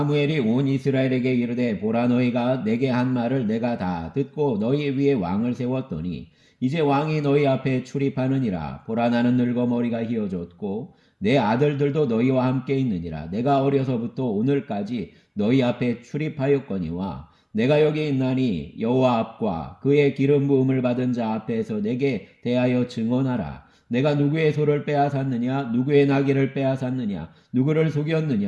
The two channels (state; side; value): identical; both; correlation 1.00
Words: 온 이스라엘에게 이르되 보라 너희가 내게 한 말을 내가 다 듣고 너희 위에 왕을 세웠더니 이제 왕이 너희 앞에 출입하느니라. 보라 나는 늙어 머리가 휘어졌고 내 아들들도 너희와 함께 있느니라. 내가 어려서부터 오늘까지 너희 앞에 출입하였거니와 내가 여기 있나니 여호와 앞과 그의 기름 부음을 받은 자 앞에서 내게 대하여 증언하라. 내가 누구의 소를 빼앗았느냐 누구의 나귀를 빼앗았느냐 누구를